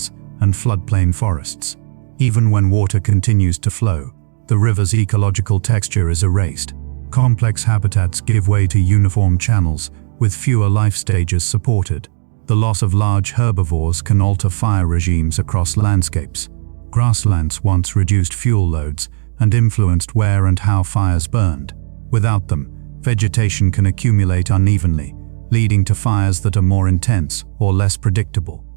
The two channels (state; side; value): silent; left; 67 dB below the other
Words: and floodplain forests. Even when water continues to flow, the river's ecological texture is erased. Complex habitats give way to uniform channels, with fewer life stages supported. The loss of large herbivores can alter fire regimes across landscapes. Grasslands once reduced fuel loads and influenced where and how fires burned. Without them, vegetation can accumulate unevenly, leading to fires that are more intense or less predictable.